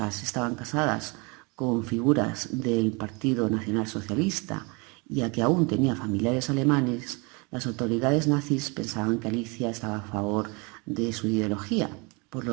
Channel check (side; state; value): left; quieter; 29.4 dB